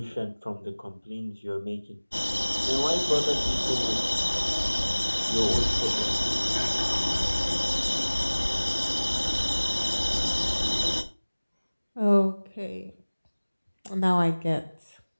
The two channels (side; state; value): both; inverted; correlation -1.00